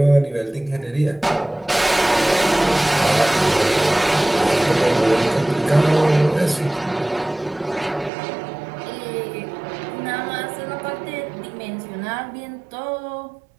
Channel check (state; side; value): drops out; left; at 8.1 s